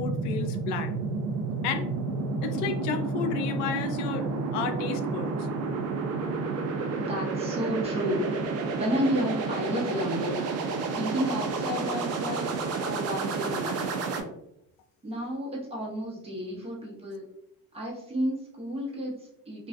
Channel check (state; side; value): normal; both; correlation 0.34